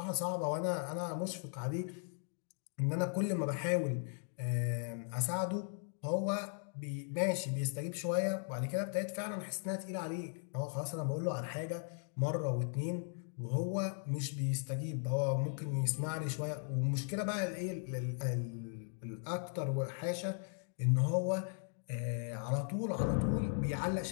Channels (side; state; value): right; silent; 53 dB below the other